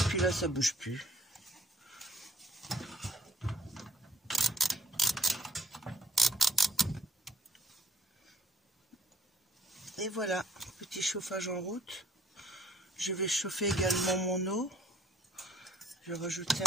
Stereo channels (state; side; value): normal; both; correlation 0.64